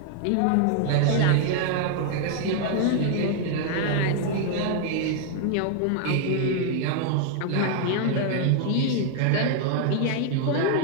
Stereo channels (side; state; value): both; different; correlation 0.00